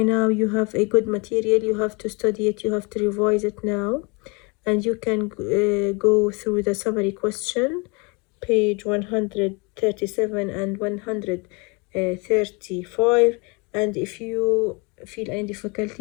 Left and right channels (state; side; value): quieter; right; 29.2 dB